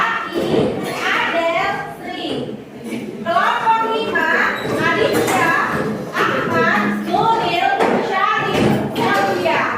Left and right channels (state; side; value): identical; both; correlation 1.00